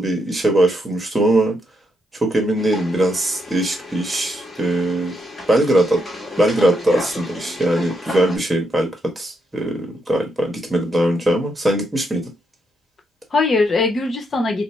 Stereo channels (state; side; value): normal; both; correlation 0.79